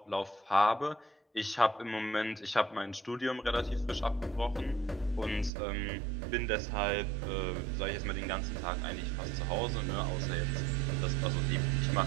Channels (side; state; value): left; drops out; at 5.5 s